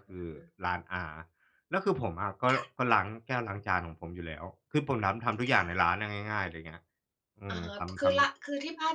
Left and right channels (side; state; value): both; identical; correlation 1.00